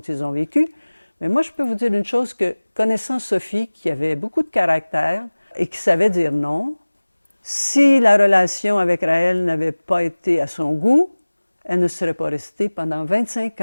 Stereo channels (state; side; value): inverted; both; correlation -1.00